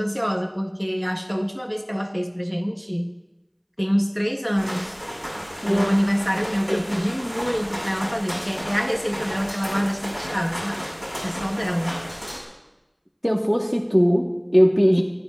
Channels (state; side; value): identical; both; correlation 1.00